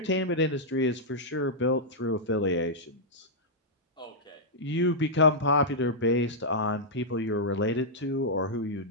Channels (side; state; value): both; normal; correlation -0.08